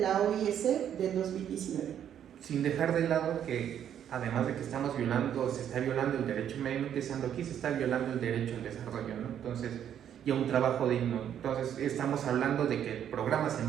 OIS del 2019. Sin dejar de lado que además de que se está violando el derecho medio ambiente, aquí se está violando el derecho al desarrollo, ¿no? Entonces, y a un trabajo digno. Entonces estamos hablando de que el programa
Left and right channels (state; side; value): quieter; left; 9.7 dB